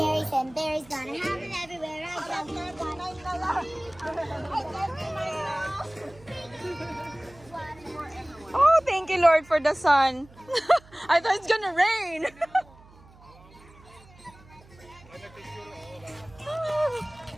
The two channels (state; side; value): noise; right; hum, 24 dB below the sound